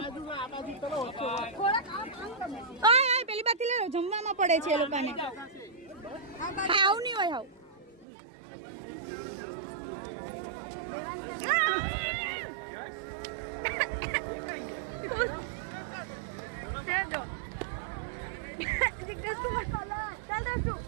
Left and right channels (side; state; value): left; drops out; at 8.1 s